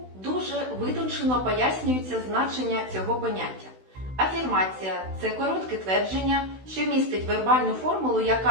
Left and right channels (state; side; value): late; left; 16 ms